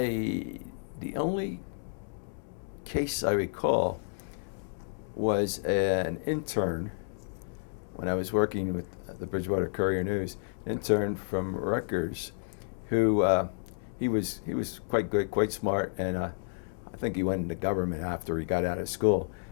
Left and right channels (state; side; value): silent; right; digital silence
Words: only case I recall was an intern when I was working with the Bridgewater Courier News, an intern from Rutgers, who he was quite good, quite smart, and I think he went into government after he got out of school.